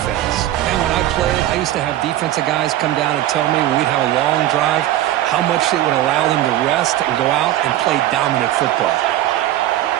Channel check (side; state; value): left; quieter; 13.8 dB